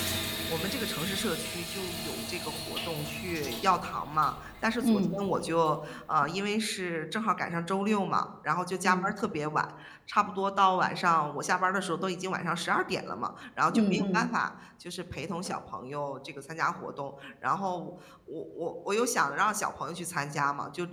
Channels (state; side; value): identical; both; correlation 1.00